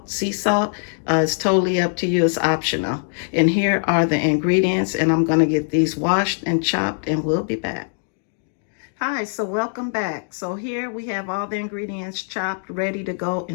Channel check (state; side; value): silent; right; digital silence